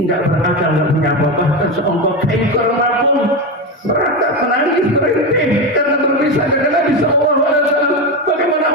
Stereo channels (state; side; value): normal; both; correlation 0.15